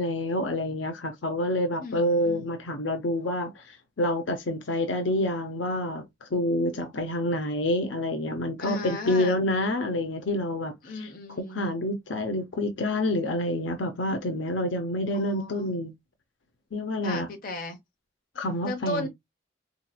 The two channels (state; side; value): normal; both; correlation 0.07